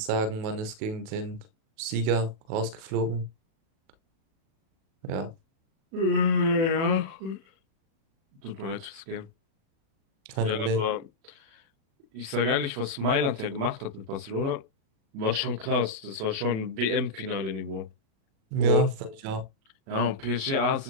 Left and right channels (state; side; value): late; left; 36 ms